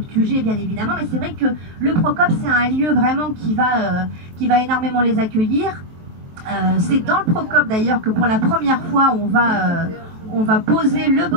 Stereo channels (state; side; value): late; left; 23 ms